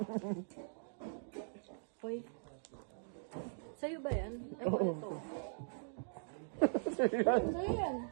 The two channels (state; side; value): silent; left; digital silence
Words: Hoy. Sa'yo ba yan? Ewan ito.